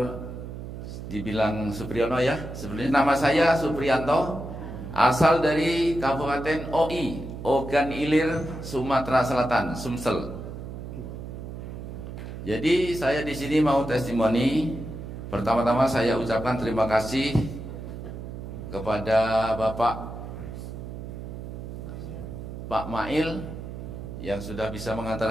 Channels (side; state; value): right; noise; hum, 9 dB below the sound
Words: dibilang Supriyono ya. Sebenarnya nama saya Supriyanto, asal dari Kabupaten OI, Ogan Ilir, Sumatera Selatan, Sumsel. Jadi saya di sini mau testimoni. Pertama-tama saya ucapkan terima kasih kepada Pak Mail yang sudah bisa mengantar